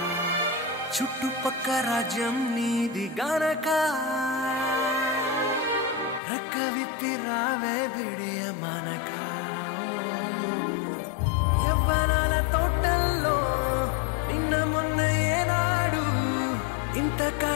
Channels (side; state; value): right; drops out; at 6.2 s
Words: చుట్టుపక్క రాజ్యం నీది గనక రెక్క విప్పి రావే బిడియ మనక యవ్వనాల తోటల్లో నిన్న మొన్న ఏనాడు ఇంత